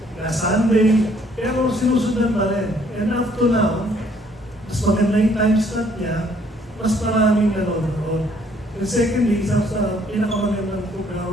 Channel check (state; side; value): normal; both; correlation 0.64